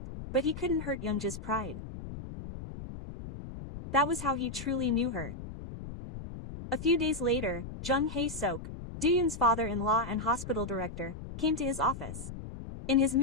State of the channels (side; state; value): left; noise; rumble, 10 dB below the sound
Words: but he couldn't hurt Youngja's pride. That was how he truly knew her. A few days later, Jung Hae-sok, Do-yoon's father-in-law and hospital director, came to his office. In his